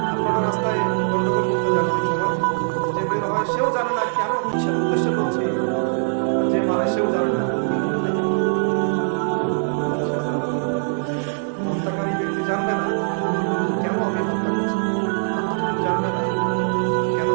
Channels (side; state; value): left; silent; digital silence